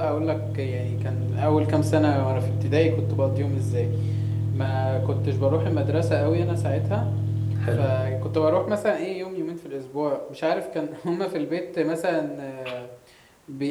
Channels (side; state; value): both; identical; correlation 1.00